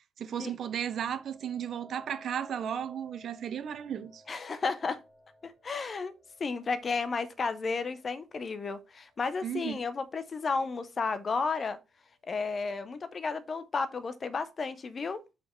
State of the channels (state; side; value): normal; both; correlation 0.80